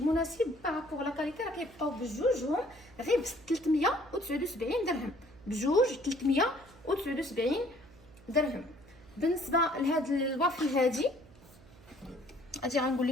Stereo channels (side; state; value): right; noise; hum, 24 dB below the sound